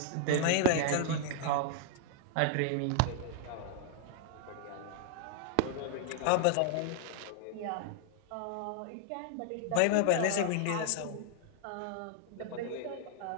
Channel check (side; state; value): both; different; correlation 0.00